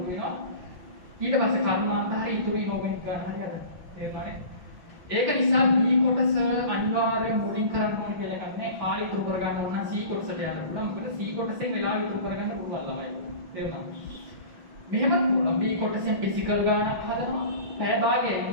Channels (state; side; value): late; left; 6.0 ms